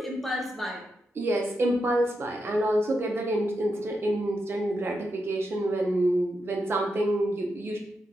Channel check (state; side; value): normal; both; correlation 0.85